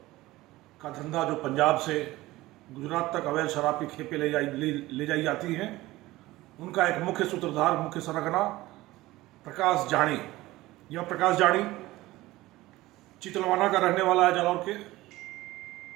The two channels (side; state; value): left; quieter; 18.1 dB